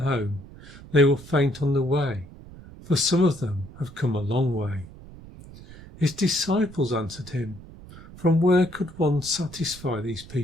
home, they will faint on the way, for some of them have come a long way. His disciples answered him, From where could one satisfy these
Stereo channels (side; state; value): right; noise; rumble, 18 dB below the sound